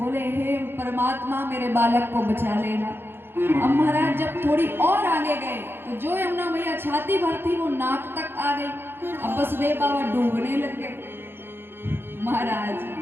हे परमात्मा मेरे बालक को बचा लेना। अब महाराज जब थोड़ी और आगे गए तो जो यमुना मैया छाती भर थी वो नाक तक आ गई। अब वसुदेव बाबा डूबने लग गए। महाराज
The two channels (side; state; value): left; late; 0.10 ms